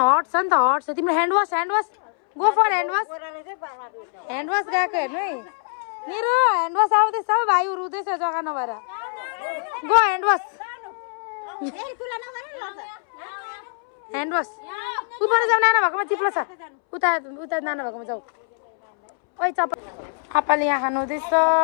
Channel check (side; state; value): right; silent; 63 dB below the other